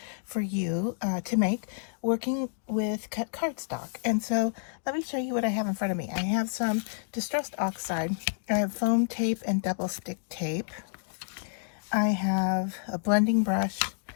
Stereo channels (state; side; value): silent; right; digital silence